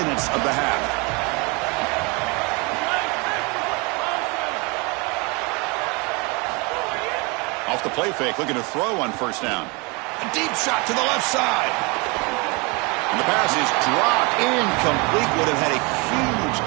minutes of the half. Off the play fake, looking to throw on 1st down. A deep shot to the left side. And the pass is dropped. Incomplete. Would have had a huge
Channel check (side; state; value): left; quieter; 28.8 dB